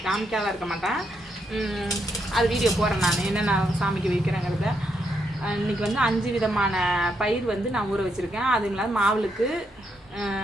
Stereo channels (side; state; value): both; normal; correlation 0.78